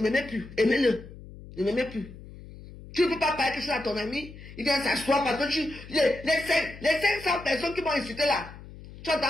plus. Aimez-le. Ne m'aimaient plus. Tu ne peux pas parler quelque chose à ton ami. Il vient s'asseoir parce que les 500 personnes qui m'ont insulté là. Tu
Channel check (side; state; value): left; noise; hum, 16 dB below the sound